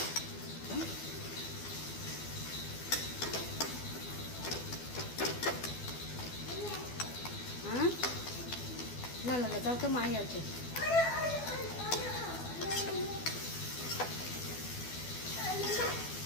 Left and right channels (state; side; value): late; right; 12 ms